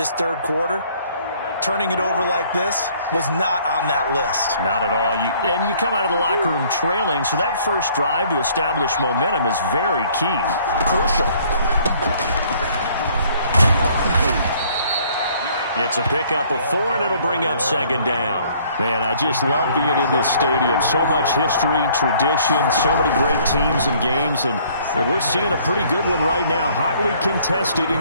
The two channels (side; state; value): both; inverted; correlation -0.59